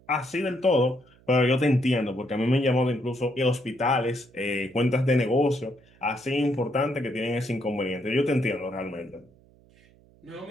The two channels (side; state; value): right; noise; hum, 29 dB below the sound